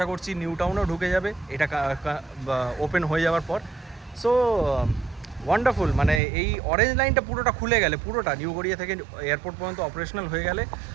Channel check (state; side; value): drops out; left; at 6.2 s